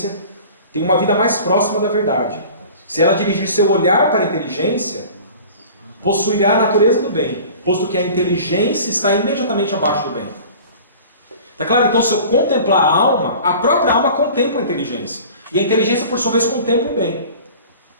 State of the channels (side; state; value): both; inverted; correlation -0.42